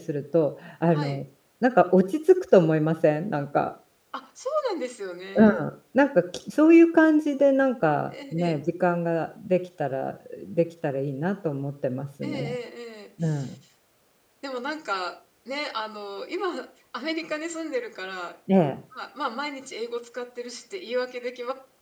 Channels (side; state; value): both; identical; correlation 1.00